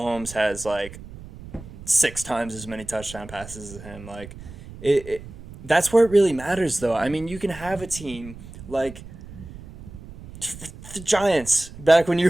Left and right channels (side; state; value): right; noise; rumble, 16 dB below the sound